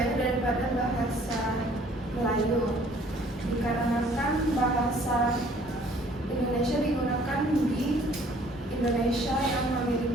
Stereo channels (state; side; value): normal; both; correlation 0.57